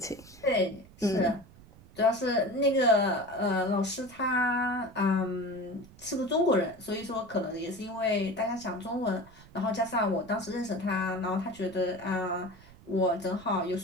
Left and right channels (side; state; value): right; noise; rumble, 22 dB below the sound